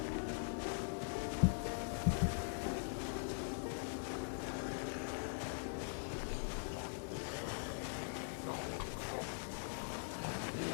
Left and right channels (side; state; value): right; silent; digital silence